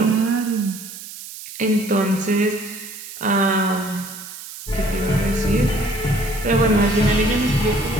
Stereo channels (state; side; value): noise; right; hiss, 13 dB below the sound